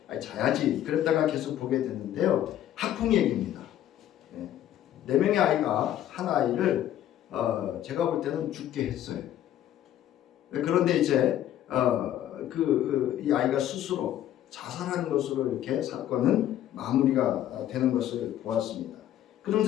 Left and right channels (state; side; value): quieter; right; 11.9 dB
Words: 자야지 그랬다가 계속 보게 됐는데요. 학풍 얘기입니다. 4명의 아이가 한 아이를 제가 볼 때는 죽게 했어요. 그런데 이제 이 아이가 스스로 자살한 것으로 이렇게 사건은 마무리가 되는 것을 보았습니다.